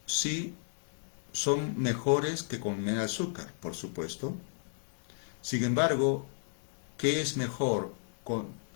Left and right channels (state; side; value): silent; right; 56 dB below the other